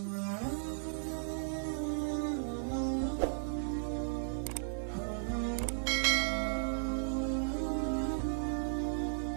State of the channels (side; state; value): left; silent; digital silence